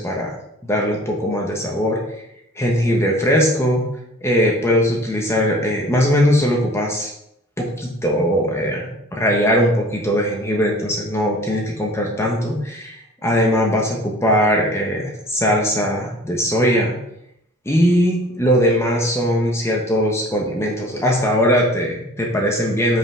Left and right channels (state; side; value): normal; both; correlation 0.47